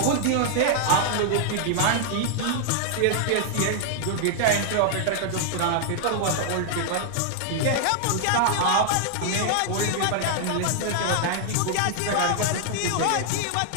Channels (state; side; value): different; both; correlation -0.01